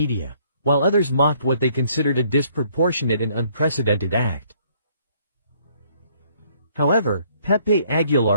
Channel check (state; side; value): inverted; both; correlation -0.64